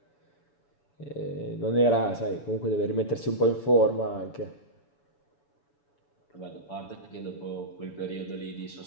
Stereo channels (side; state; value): right; late; 7.0 ms